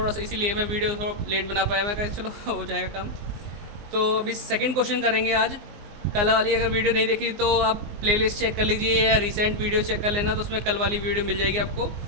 सा इसीलिए मैं वीडियो थोड़ा लेट बना पाया, मैं कहा चलो हो जाएगा काम। तो अभी सेकंड क्वेश्चन करेंगे आज। कल वाली अगर वीडियो नहीं देखी तो आप प्लेलिस्ट चेक कर लीजिए या रिसेंट वीडियो चेक कर लेना, तो उसमें कल वाली वीडियो मिल जाएगी आपको।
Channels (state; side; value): late; left; 19 ms